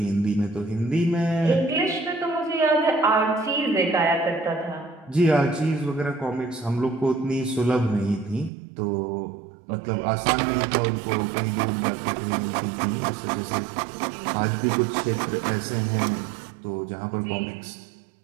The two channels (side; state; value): left; drops out; at 8.5 s